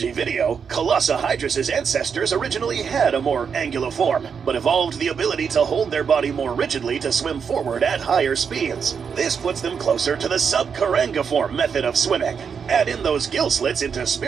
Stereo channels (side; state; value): left; quieter; 6.5 dB